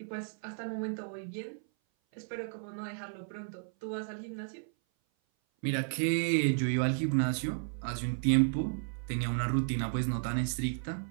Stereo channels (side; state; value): left; silent; 56 dB below the other